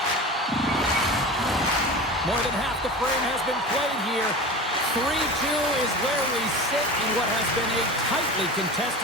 More than half the frame has been played here. is where we sit in what has been a tightly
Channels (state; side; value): normal; both; correlation 0.31